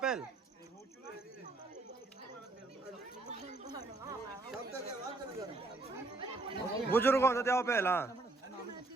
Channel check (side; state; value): left; quieter; 3.2 dB